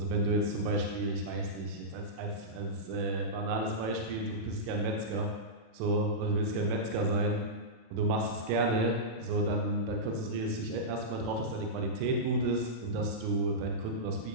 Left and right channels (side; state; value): left; late; 36 ms